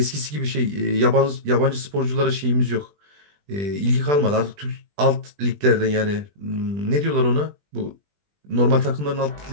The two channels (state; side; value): late; left; 20 ms